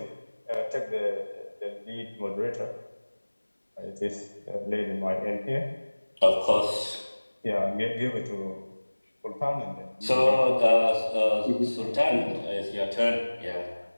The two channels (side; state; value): both; inverted; correlation -1.00